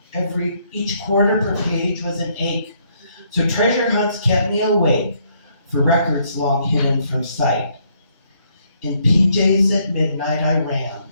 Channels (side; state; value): both; inverted; correlation -0.70